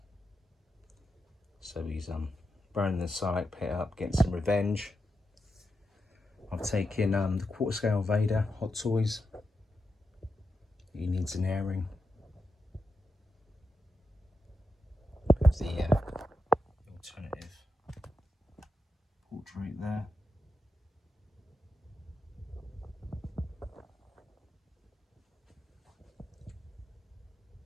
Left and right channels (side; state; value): both; normal; correlation 0.87